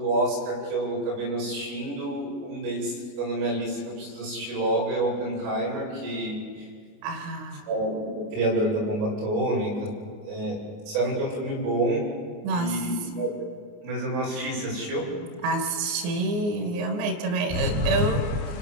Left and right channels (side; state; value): left; late; 29 ms